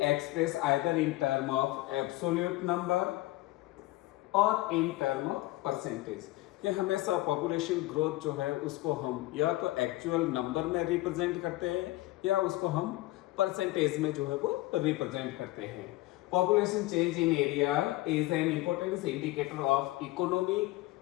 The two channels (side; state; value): right; quieter; 18.4 dB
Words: express either in term of absolute number और इन टर्म ऑफ परसेंटेज. कि हमेशा पॉपुलेशन ग्रोथ जो है उसको हम या तो एक्चुअल नंबर में रिप्रेजेंट करते हैं या उसको हम परसेंटेज में जो है वो रिप्रेजेंट करते हैं. Population change in area is an important indicator of economic